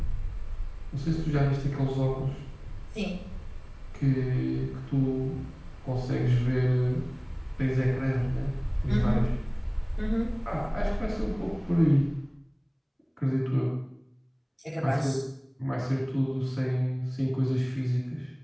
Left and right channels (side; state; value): both; identical; correlation 1.00